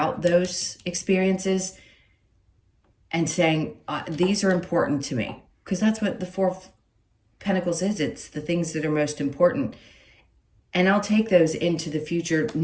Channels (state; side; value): identical; both; correlation 1.00